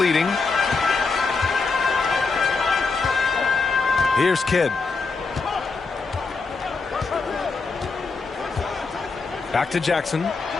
Here's Kidd. Back to Jackson.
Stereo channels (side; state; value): right; quieter; 4.3 dB